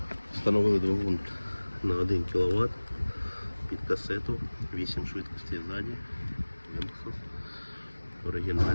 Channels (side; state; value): both; inverted; correlation -1.00